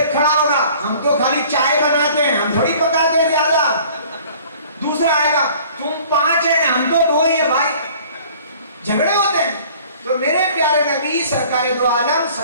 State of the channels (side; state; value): both; inverted; correlation -0.50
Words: खड़ा होगा, हम तो खाली चाय बनाते हैं, हम थोड़ी पकाते हैं ज्यादा। दूसरा आएगा, तुम 5 हैं, हम तो 2 ही है भाई, झगड़े होते हैं। तो मेरे प्यारे नबी सरकार दो आलम